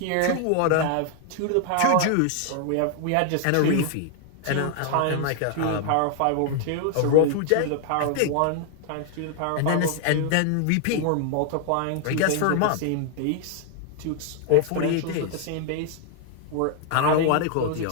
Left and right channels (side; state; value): both; different; correlation 0.00